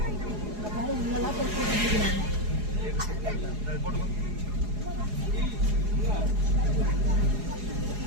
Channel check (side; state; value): left; late; 4.8 ms